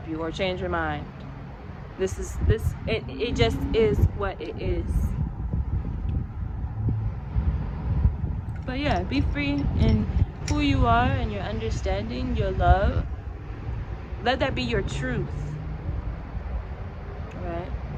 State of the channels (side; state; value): both; identical; correlation 1.00